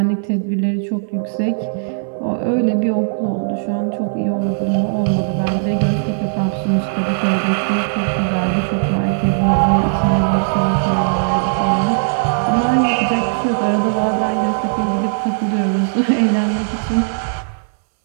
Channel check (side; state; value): left; silent; digital silence